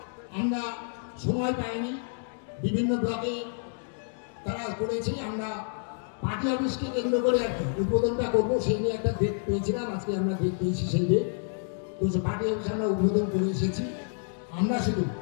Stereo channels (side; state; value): right; silent; digital silence